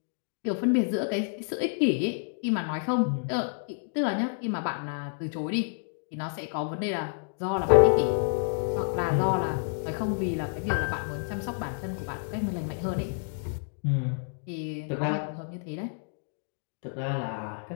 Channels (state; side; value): silent; right; digital silence